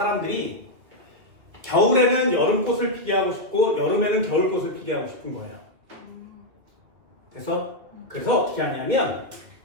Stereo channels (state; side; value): late; left; 2.6 ms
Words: 겨울에는 여름꽃을 피게 하고 싶고 여름에는 겨울꽃을 피게 하고 싶은 거예요. 그래서 어떻게 하냐면